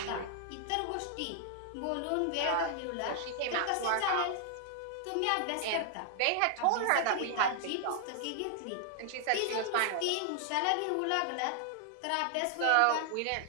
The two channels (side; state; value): both; different; correlation 0.00